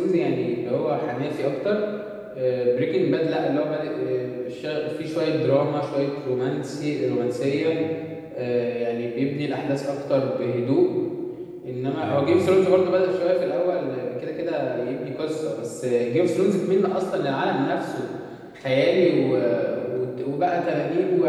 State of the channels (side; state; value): both; identical; correlation 1.00